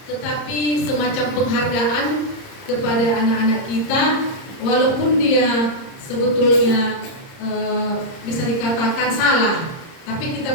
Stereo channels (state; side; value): late; right; 30 ms